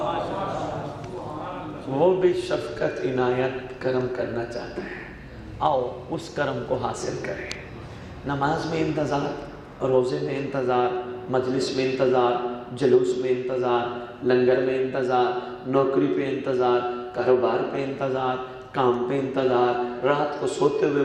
وہ بھی شفقت عنایت کرم کرنا چاہتا ہے، آؤ اس کرم کو حاصل کریں۔ نماز میں انتظار، روزے میں انتظار، مجلس میں انتظار، جلوس میں انتظار، لنگر میں انتظار، نوکری پہ انتظار، کاروبار پہ انتظار، کام پہ انتظار، رات کو سوتے ہوئے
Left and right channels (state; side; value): identical; both; correlation 1.00